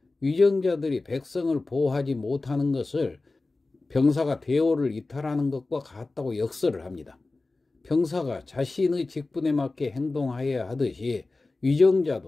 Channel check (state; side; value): quieter; right; 3.4 dB